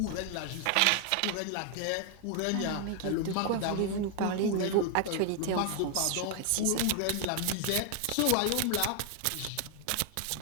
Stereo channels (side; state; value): both; different; correlation 0.00